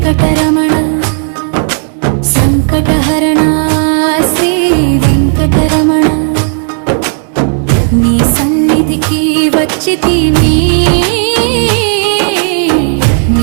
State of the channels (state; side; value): silent; left; 62 dB below the other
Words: సంకటహరణ శ్రీ వెంకటరమణ నీ సన్నిధికి వచ్చితిమి